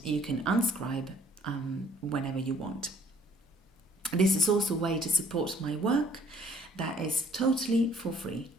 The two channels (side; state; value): both; normal; correlation 0.60